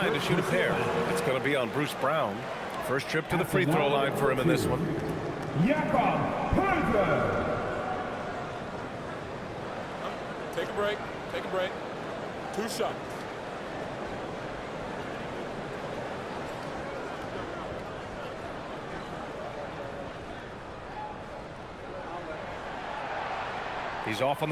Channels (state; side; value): identical; both; correlation 1.00